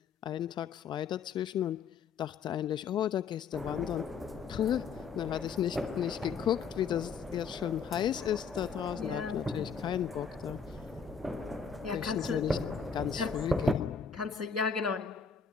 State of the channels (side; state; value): right; quieter; 6.1 dB